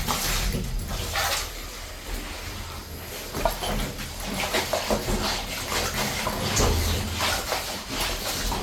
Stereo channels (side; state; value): both; identical; correlation 1.00